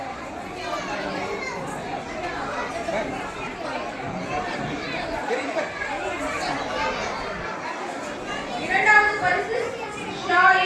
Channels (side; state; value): both; identical; correlation 1.00